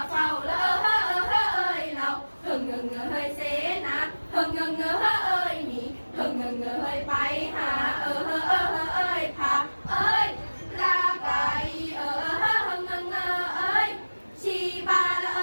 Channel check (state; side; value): inverted; both; correlation -1.00